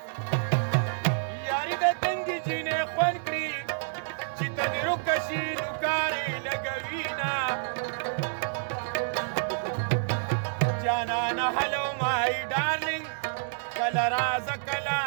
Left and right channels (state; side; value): silent; left; digital silence